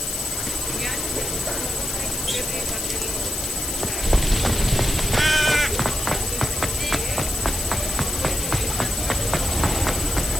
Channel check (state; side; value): noise; left; hiss, 4 dB below the sound